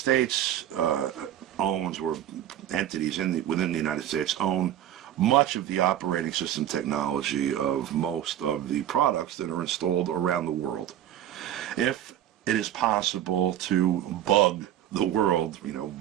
owns, or entities within the United States own much of the operating system technology of most of the products that are installed around the world, if it is possible to bug the world,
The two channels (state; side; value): quieter; left; 11.5 dB